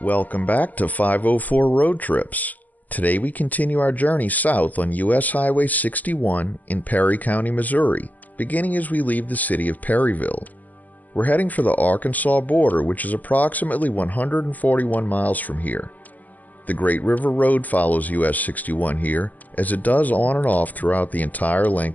Welcome back to 504 Road Trips. Today we continue our journey south on US Highway 61 in Perry County, Missouri, beginning as we leave the city of Perryville. We're heading for the Arkansas border, which is approximately 141 miles from here. The Great River Road follows US 61 here, as it does on and off throughout the entire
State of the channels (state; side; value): late; right; 0.080 ms